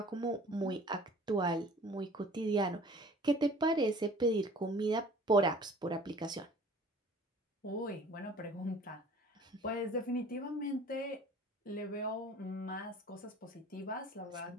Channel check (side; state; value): both; normal; correlation 0.48